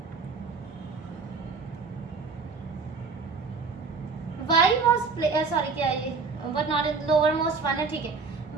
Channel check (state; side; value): quieter; left; 4.7 dB